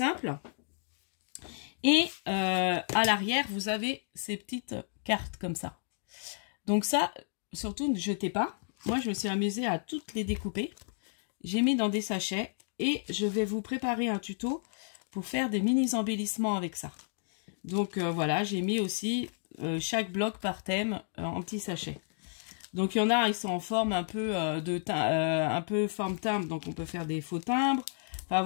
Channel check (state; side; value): silent; right; digital silence